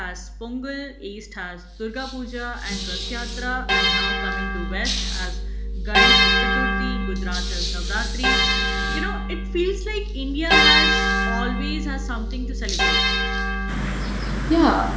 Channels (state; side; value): identical; both; correlation 1.00